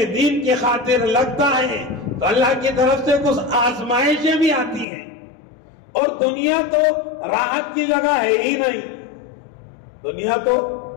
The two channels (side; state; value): right; drops out; at 4.9 s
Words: دین کی خاطر لگتا ہے تو اللہ کی طرف سے کچھ آزمائشیں بھی آتی ہیں. اور دنیا تو راحت کی جگہ ہے ہی نہیں. دنیا تو